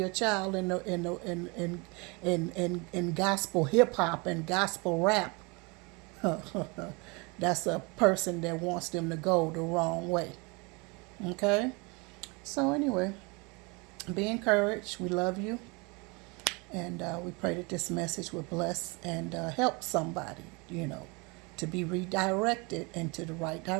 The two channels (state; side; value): quieter; left; 28.4 dB